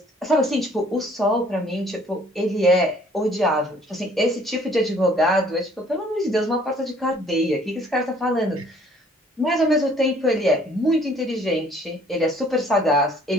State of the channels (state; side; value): normal; both; correlation 0.58